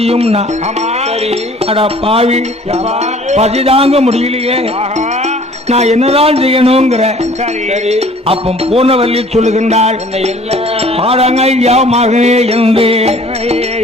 ஆமா சரி அடா பாவி பசிதாங்க முடியலையே, நான் என்னதான் செய்யணுங்கிற. சரி அப்ப பூர்ணவல்லி சொல்லுகின்றாள் பாடங்க ஐயா மகனே என்று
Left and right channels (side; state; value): both; normal; correlation 0.52